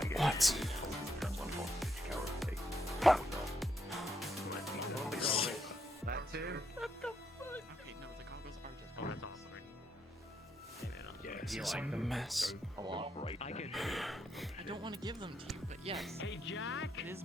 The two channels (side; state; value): both; normal; correlation 0.77